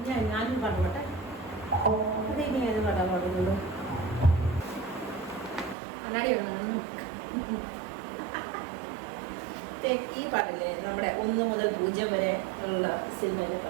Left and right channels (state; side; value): drops out; left; at 5.8 s